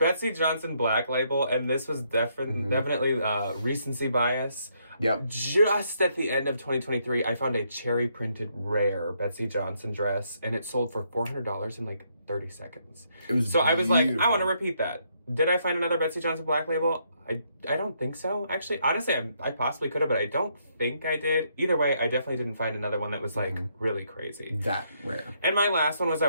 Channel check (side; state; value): both; inverted; correlation -0.74